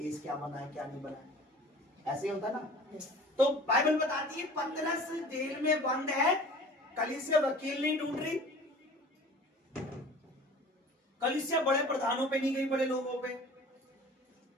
क्या बना है क्या नहीं बना है, ऐसे ही होता ना। तो बाइबल बताती है पतरस जेल में बंद है, कलीसिया वकील नहीं ढूंढ रही, कलीसिया बड़े प्रधानों पे नहीं गई, बड़े लोगों पे,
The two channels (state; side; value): normal; both; correlation 0.44